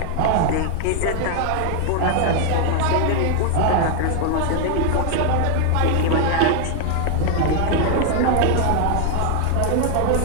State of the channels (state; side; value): different; both; correlation 0.00